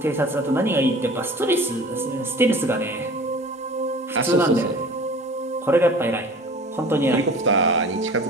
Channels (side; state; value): both; normal; correlation 0.42